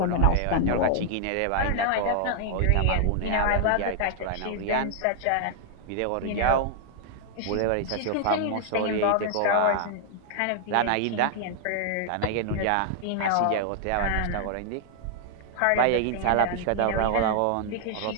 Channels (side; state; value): both; different; correlation -0.01